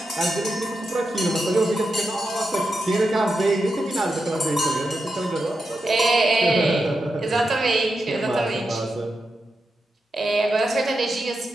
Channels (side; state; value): both; normal; correlation 0.88